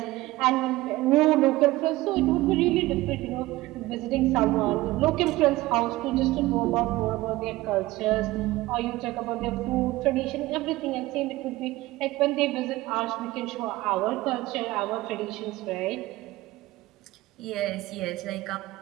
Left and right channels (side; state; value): left; quieter; 18.4 dB